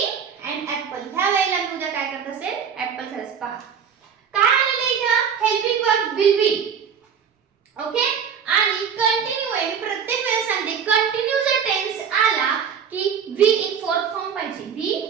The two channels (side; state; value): left; quieter; 7.2 dB